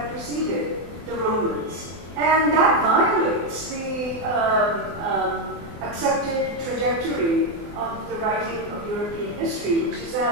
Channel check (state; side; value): late; left; 24 ms